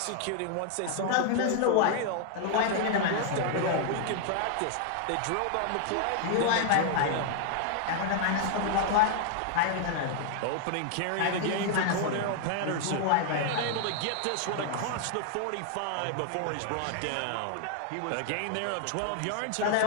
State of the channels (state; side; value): different; both; correlation 0.00